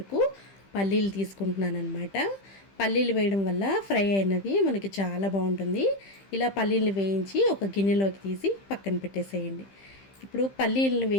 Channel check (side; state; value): right; late; 15 ms